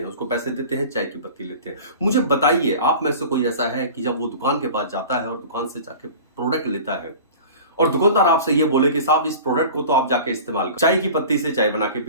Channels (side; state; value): both; inverted; correlation -0.38